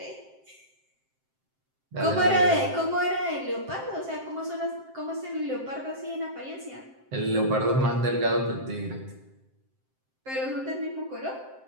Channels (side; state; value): left; late; 7.6 ms